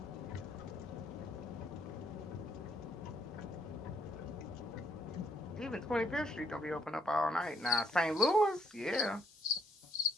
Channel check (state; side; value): normal; both; correlation 0.71